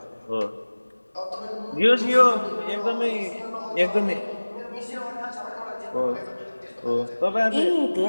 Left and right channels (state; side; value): inverted; both; correlation -1.00